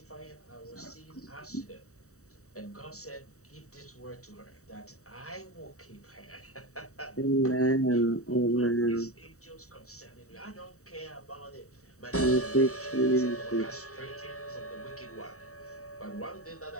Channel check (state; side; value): late; right; 0.65 ms